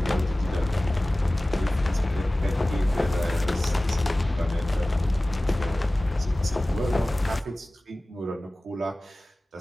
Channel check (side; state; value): both; normal; correlation 0.98